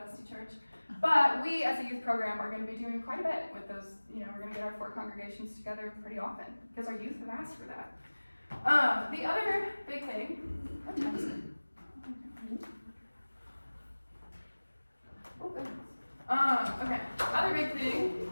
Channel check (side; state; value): both; inverted; correlation -1.00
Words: bestie church. But we as a youth program are going to be doing quite a bit with those. We're going to get our 4 congregations together pretty often because our youth have asked for that. The other big thing, what time is it? Oh, goodness. Okay. Other big thing